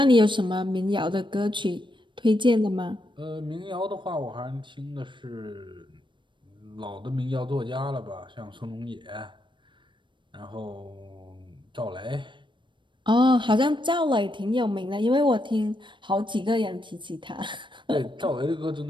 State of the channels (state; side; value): late; left; 0.23 ms